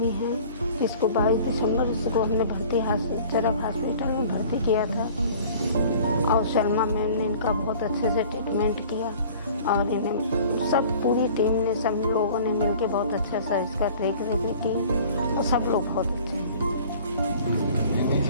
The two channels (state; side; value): inverted; both; correlation -0.47